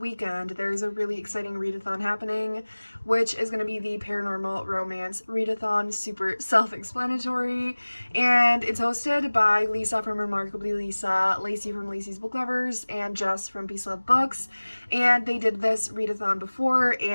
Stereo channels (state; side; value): inverted; both; correlation -1.00